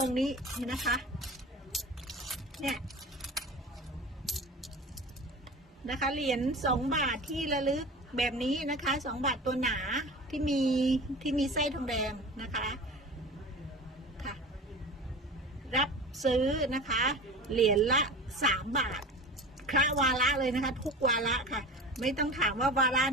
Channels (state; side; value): normal; both; correlation 0.35